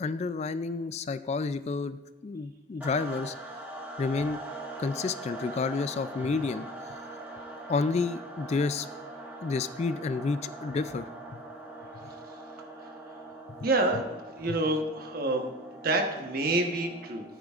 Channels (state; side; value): normal; both; correlation 0.42